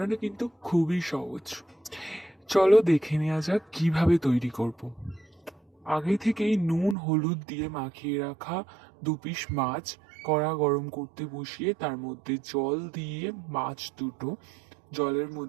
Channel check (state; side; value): drops out; left; at 7.0 s